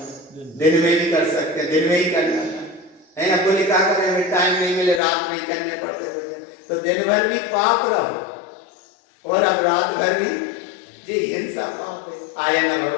दिन में भी कर सकते हैं, दिन में ही करना है ना। बोले क्या करें हमें टाइम नहीं मिले, रात में ही करने पड़ते भोजन, तो दिन भर भी पाप रहो और अब रात भर भी जी हिंसा पाप है। आया ना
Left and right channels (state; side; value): drops out; right; at 5.0 s